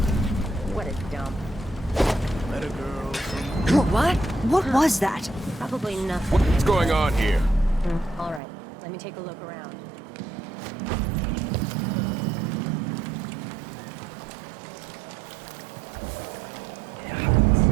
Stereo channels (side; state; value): left; drops out; at 8.4 s